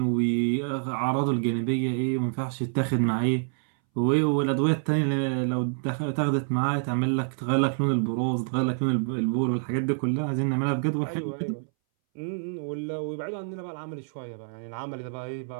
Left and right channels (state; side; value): silent; left; 60 dB below the other